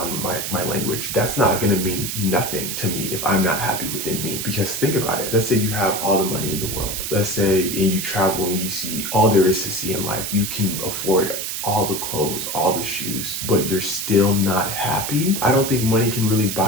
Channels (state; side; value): noise; right; hiss, 4 dB below the sound